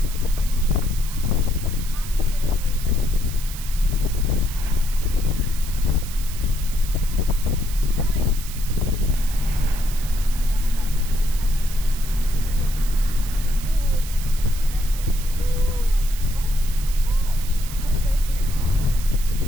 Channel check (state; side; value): noise; right; hiss, 12 dB below the sound